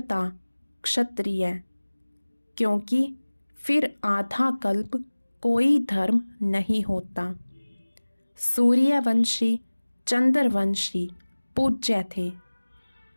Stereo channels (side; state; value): both; inverted; correlation -1.00